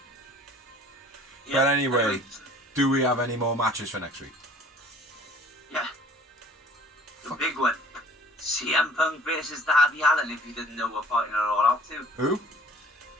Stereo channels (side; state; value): both; normal; correlation 0.52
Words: Yeah, But anyway, do we have any more matches for next week? Yeah. The big one. CM Punk versus Dabby Allen, if you didn't know we're fighting it all out too. Who?